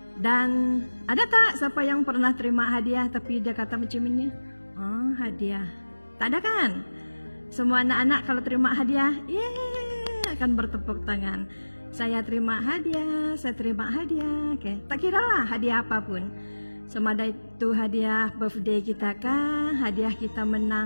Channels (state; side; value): inverted; both; correlation -1.00